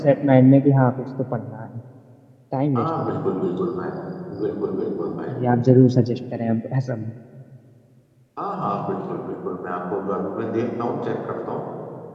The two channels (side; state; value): both; identical; correlation 1.00